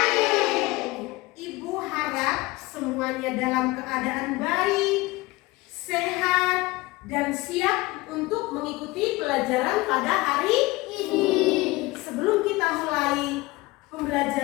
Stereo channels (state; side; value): quieter; right; 21.3 dB